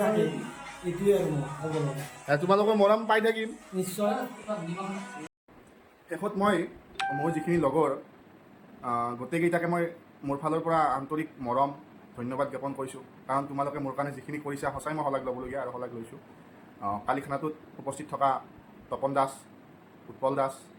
থাকে, এইটোৱে আৰু তোমালোকৰ মৰম পাই থাকিম নিশ্চয়। শেষত মই মোৰ যিখিনি লগৰ গোটেইকেইটাকে মই মোৰ ফালৰ পৰা আন্তৰিক মৰম ধন্যবাদ জ্ঞাপন কৰিছোঁ। কাৰণ তোমালোকে মোৰ কাৰণে যিখিনি কৰিছা, সঁচাই মই শলাগ ল'বলগীয়া আৰু শলাগ লৈছোঁ। কালি খানাটোত উপস্থিত থকা তপন দাস, উৎপল দাস,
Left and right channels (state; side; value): identical; both; correlation 1.00